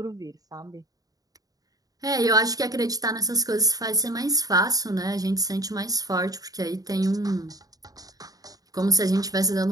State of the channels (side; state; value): left; late; 0.18 ms